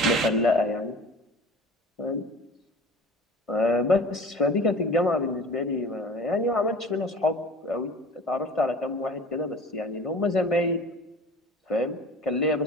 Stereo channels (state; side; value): normal; both; correlation 0.41